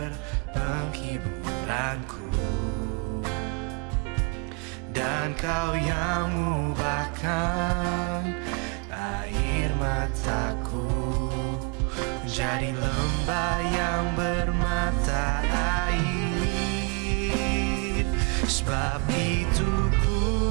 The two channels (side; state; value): left; quieter; 33.0 dB